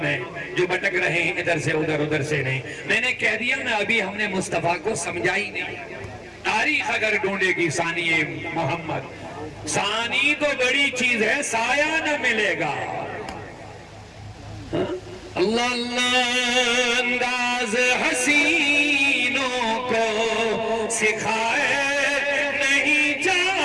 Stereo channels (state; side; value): identical; both; correlation 1.00